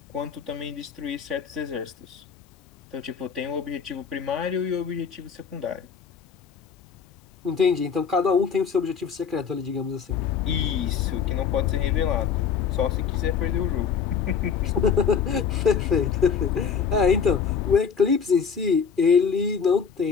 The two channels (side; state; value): right; quieter; 6.5 dB